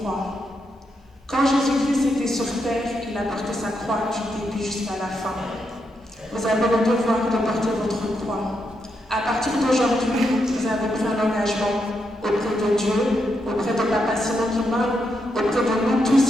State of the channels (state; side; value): normal; both; correlation 0.82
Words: Quand Jésus-Christ était sur terre, il a porté sa croix du début jusqu'à la fin. Vous avez le devoir de porter votre croix. À partir d'aujourd'hui, vous avez pris un engagement auprès de Dieu, auprès de Papa Simon Kimbangu, auprès de nous